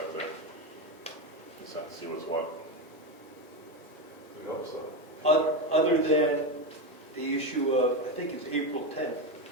there. Just have to see what's what. We hope so. Other than the issue of, I think it's April 10th,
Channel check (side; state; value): both; normal; correlation 0.14